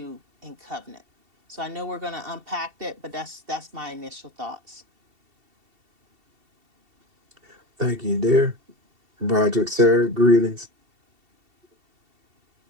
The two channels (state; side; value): late; left; 2.7 ms